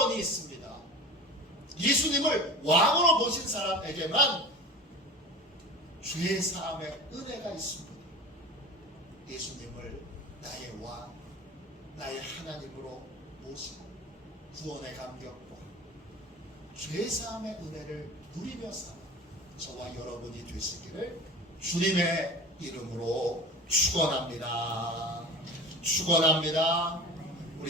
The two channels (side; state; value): both; normal; correlation 0.34